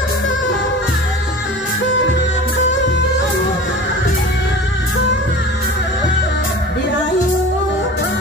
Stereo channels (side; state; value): both; normal; correlation 0.37